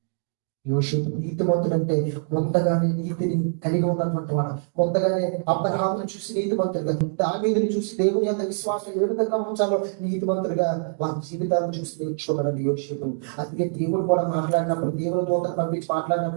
యోషేపు నీతిమంతుడంటే ముందుగానే నీతిని కలిగి ఉన్నటువంటి వాడు. ముందుగానే అబ్రహామును చూసి నీతిమంతుడిగా, దావీదుని చూసి దేవుని యొక్క విశ్వాసం ఏ విధంగా ఉంచాలో నీతిమంతుడిగా వారి జీవితాలను చూసి నేర్చుకున్నాడండి యోషేపు. అందుకే దేవుడు కూడా మాట్లాడినప్పుడు, దేవుని దూతను పంపించి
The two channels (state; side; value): silent; left; digital silence